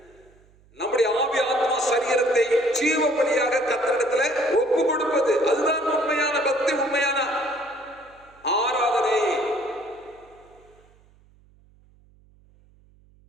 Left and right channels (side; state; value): right; noise; hum, 30 dB below the sound